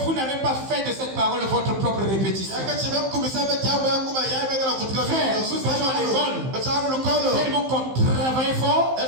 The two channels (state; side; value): late; left; 15 ms